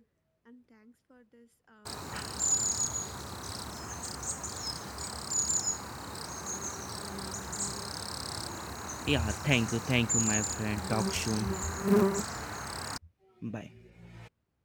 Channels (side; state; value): both; identical; correlation 1.00